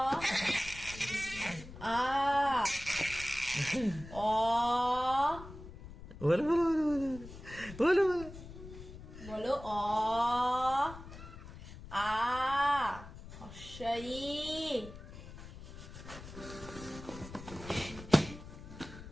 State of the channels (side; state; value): left; noise; rumble, 14 dB below the sound